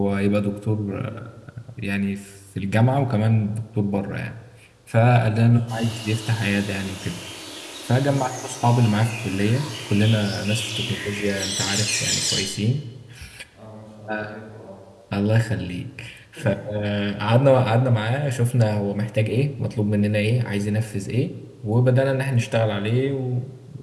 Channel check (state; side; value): identical; both; correlation 1.00